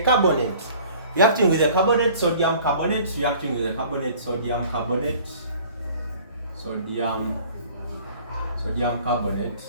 carbonate. Reacting with a carbonate, sodium carbonate, reacting with a carbonate, sodium carbonate. Sodium carbonate.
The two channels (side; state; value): both; inverted; correlation -0.50